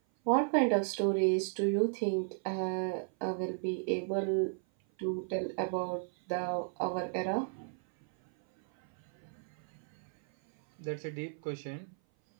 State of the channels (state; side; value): silent; left; 55 dB below the other